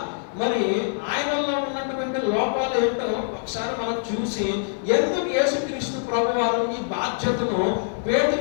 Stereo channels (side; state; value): right; silent; 62 dB below the other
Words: మరి ఆయనలో ఉన్నటువంటి లోపాలు ఏంటో ఒకసారి మనం చూసి ఎందుకు యేసుక్రీస్తు ప్రభువారు ఈ బాధ్యతను